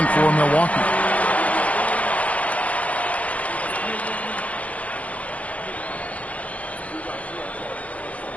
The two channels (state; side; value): late; right; 0.066 ms